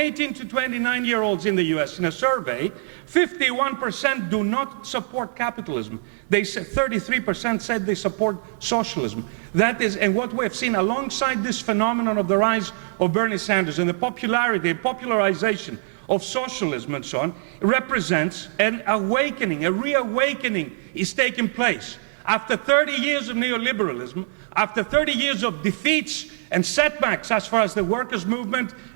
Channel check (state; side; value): silent; left; 58 dB below the other